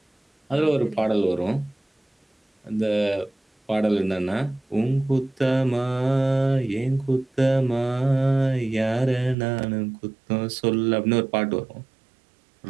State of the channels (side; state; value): left; drops out; at 9.3 s